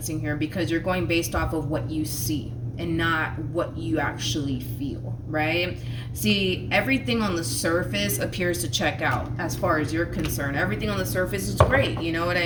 here, because you're going based off of what you see and not what you actually feel, right? See, everything on the surface appears to check out as far as you're concerned. Everything on the surface is great, you know what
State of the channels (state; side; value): identical; both; correlation 1.00